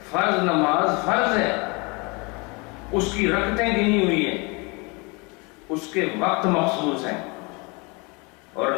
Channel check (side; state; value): right; quieter; 29.0 dB